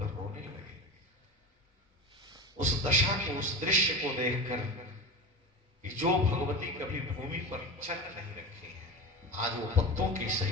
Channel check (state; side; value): normal; both; correlation 0.26